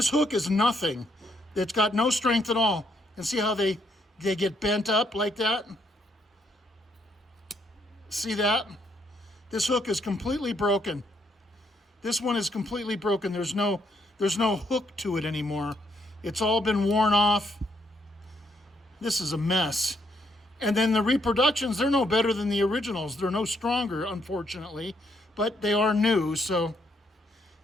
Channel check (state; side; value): normal; both; correlation 0.73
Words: hook is nothing. It's got no strength at all. And see how they get bent up like that? See that? This hook is completely broken. This one is completely broken. There's no hook to it anymore. It's all been worn off. This is a mess. And then the reproductions, they're no better than the originals. They're no stronger, unfortunately, but they are new, so.